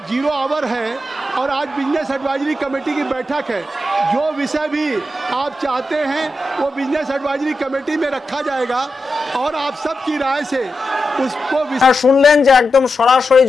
0 आवर है और आज बिजनेस एडवाइजरी कमेटी की बैठक है, जो विषय भी आप चाहते हैं वो बिजनेस एडवाइजरी कमेटी में रखा जाएगा और आप सबकी राय से उसको শুনলেন যে একদম সরাসরি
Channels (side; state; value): both; normal; correlation 0.89